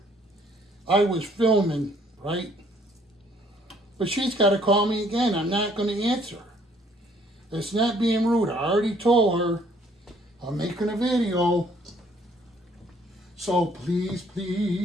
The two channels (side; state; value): both; normal; correlation 0.62